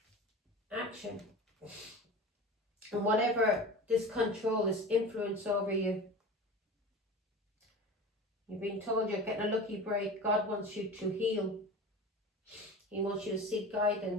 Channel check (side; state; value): both; normal; correlation 0.33